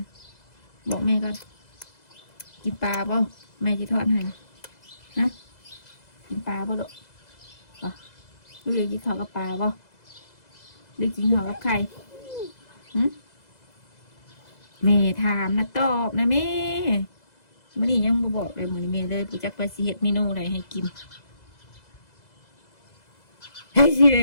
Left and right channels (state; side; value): late; right; 2.0 ms